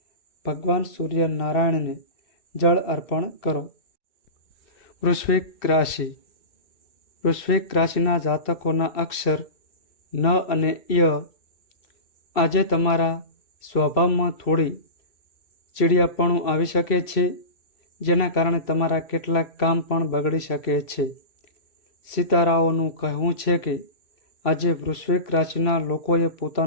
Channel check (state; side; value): late; right; 2.7 ms